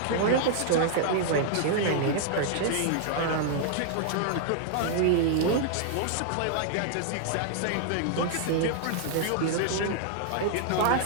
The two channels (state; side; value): different; both; correlation -0.01